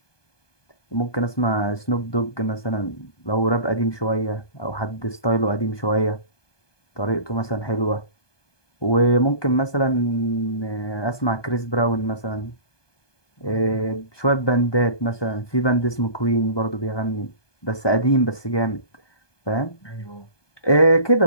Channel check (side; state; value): right; late; 1.2 ms